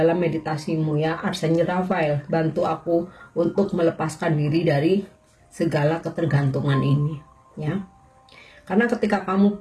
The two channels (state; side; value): identical; both; correlation 1.00